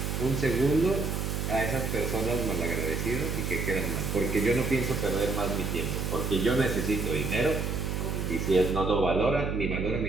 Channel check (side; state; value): right; noise; hum, 2 dB below the sound